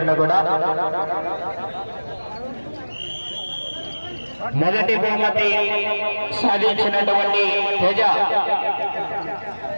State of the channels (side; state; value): both; inverted; correlation -1.00